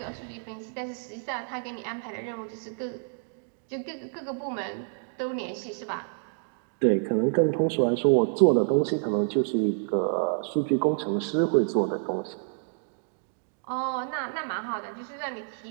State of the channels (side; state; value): left; silent; digital silence